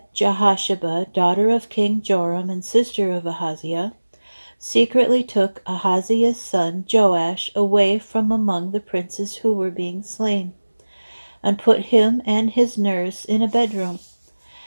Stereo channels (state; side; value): inverted; both; correlation -1.00